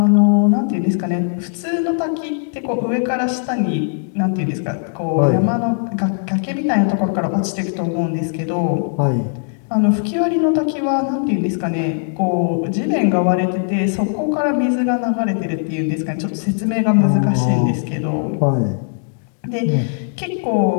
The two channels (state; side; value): silent; right; digital silence